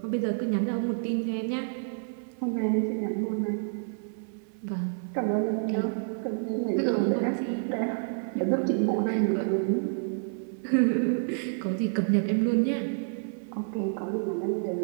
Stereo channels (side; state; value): left; silent; 55 dB below the other